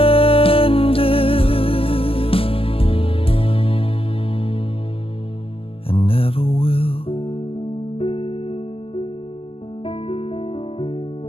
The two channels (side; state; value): right; late; 0.27 ms